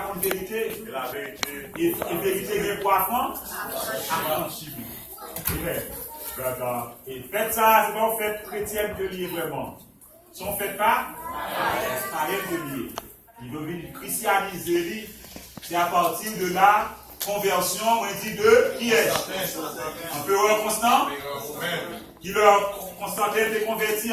vérité. Et la vérité. Et vérité est poisson. Amen. Et faites ça, c'est pas une fête chrétienne de lier vraiment. Si on ne fait pas, c'est pas de lier. Il veut venir christianiser, c'est à partir de là conversion, on dit de qui est empereur Constant, qui leur Constantin était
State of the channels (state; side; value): identical; both; correlation 1.00